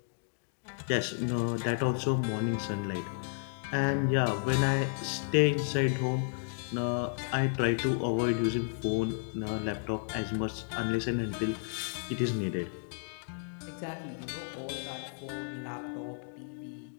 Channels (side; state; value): right; silent; digital silence